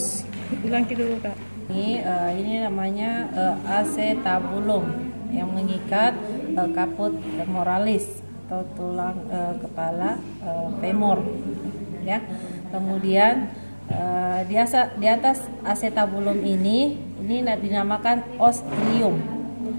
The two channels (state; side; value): inverted; both; correlation -1.00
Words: Ulangi dulu Kak. Ini namanya acetabulum yang mengikat caput femoralis atau tulang kepala femur ya. Kemudian di atas acetabulum ini dinamakan os ilium.